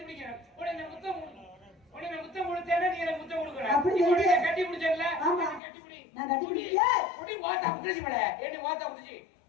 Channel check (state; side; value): drops out; right; at 5.6 s